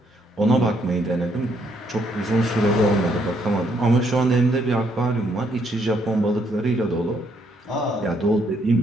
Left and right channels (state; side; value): normal; both; correlation 0.72